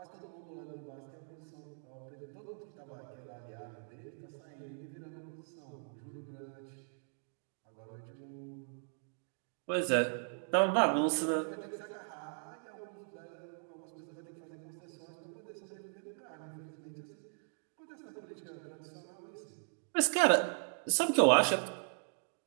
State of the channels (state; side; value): silent; left; digital silence